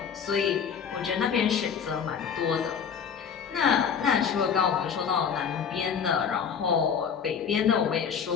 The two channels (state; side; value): quieter; right; 7.1 dB